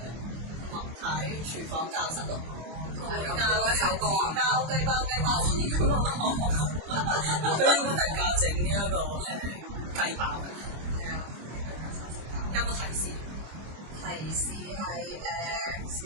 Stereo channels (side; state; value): left; late; 25 ms